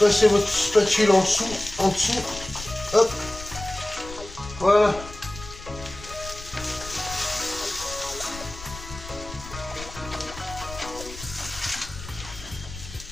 votre spatule en dessous, hop, voilà.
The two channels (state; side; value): noise; left; rumble, 13 dB below the sound